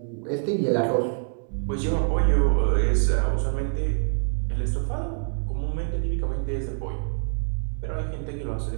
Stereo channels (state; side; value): silent; left; 61 dB below the other